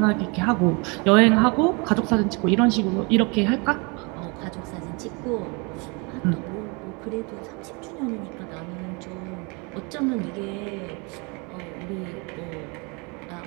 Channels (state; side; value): quieter; left; 30.6 dB